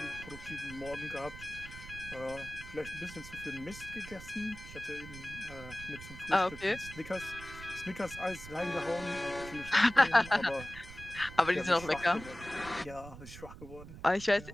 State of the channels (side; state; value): right; noise; rumble, 14 dB below the sound